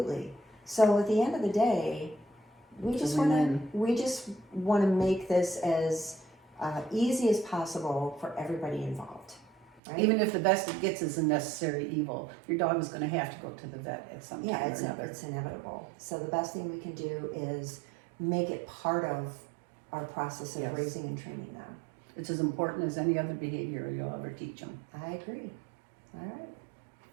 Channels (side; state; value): left; drops out; at 9.8 s